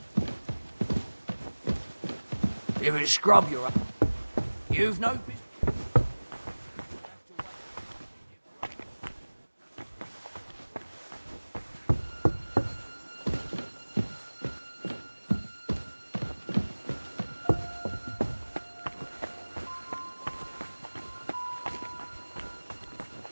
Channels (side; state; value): both; inverted; correlation -1.00